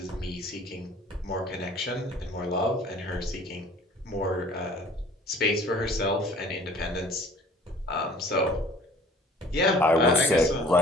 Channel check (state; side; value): normal; both; correlation 0.51